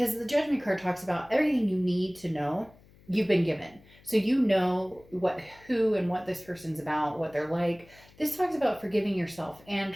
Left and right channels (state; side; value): noise; left; hum, 26 dB below the sound